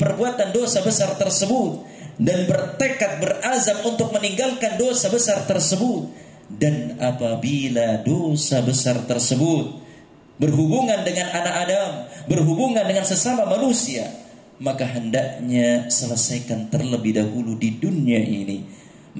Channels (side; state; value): both; identical; correlation 1.00